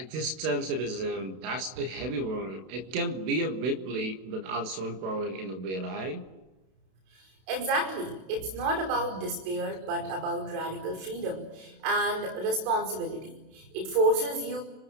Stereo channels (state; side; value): late; left; 32 ms